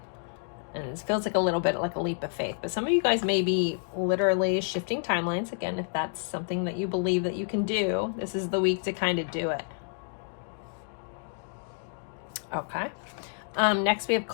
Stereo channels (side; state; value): right; silent; digital silence